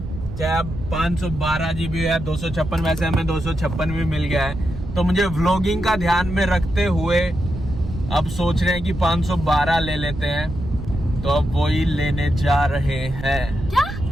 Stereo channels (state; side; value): noise; right; rumble, 9 dB below the sound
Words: चाहे अब 512 GB है, 256, वैसे हमें 256 भी मिल गया है। तो मुझे व्लॉगिंग का ध्यान में रखते हुए अब सोच रहे हैं कि 512 ले लेते हैं। तो अब वही लेने जा रहे हैं।